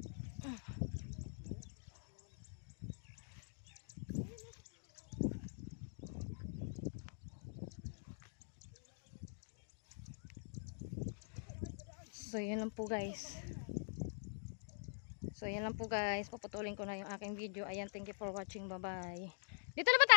So yan lang po guys. So yan lang po guys. Paputulin ko na yung aking video. Ayan, thank you for watching. Bye bye. Dito na ba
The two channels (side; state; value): right; silent; digital silence